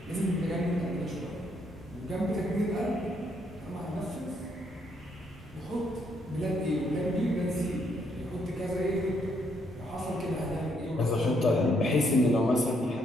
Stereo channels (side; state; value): both; normal; correlation 0.73